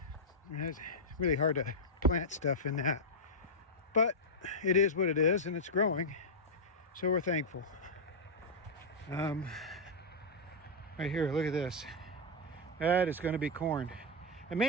And it's really hard to plant stuff in that, but it is what it is, and it's growing, so we're thankful. Right here, look at this. That is going to be corn, and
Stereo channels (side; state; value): both; normal; correlation -0.05